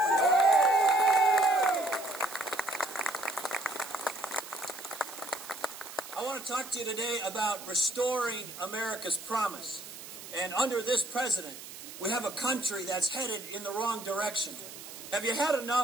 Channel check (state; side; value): noise; right; hiss, 13 dB below the sound